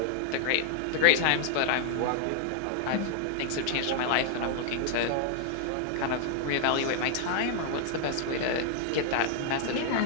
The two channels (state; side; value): different; both; correlation 0.00